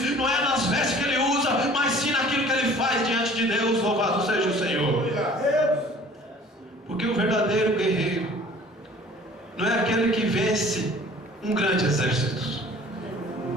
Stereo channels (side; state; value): both; normal; correlation 0.50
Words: Não é nas vestes que ele usa, mas sim naquilo que ele faz diante de Deus. Louvado seja o Senhor. Porque o verdadeiro guerreiro não é aquele que vence um grande exército.